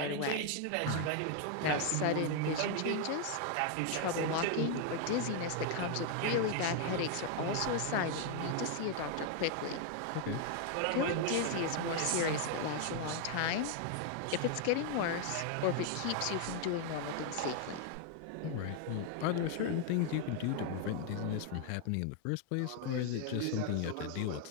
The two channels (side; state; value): both; different; correlation 0.00